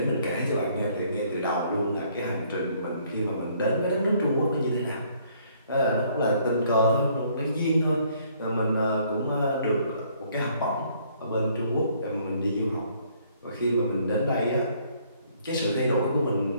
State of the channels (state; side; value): inverted; both; correlation -0.64